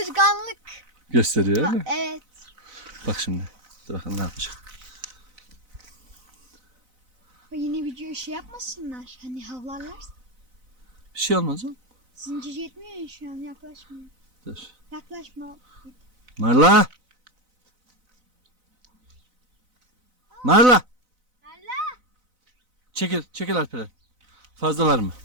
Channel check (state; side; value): late; left; 4.0 ms